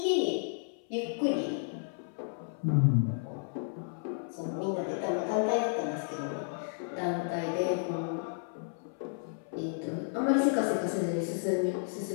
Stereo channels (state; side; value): silent; right; 56 dB below the other